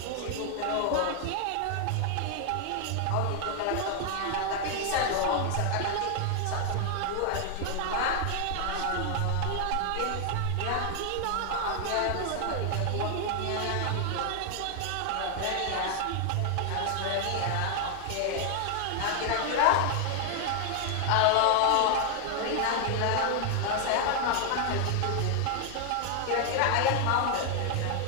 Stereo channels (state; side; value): different; both; correlation 0.00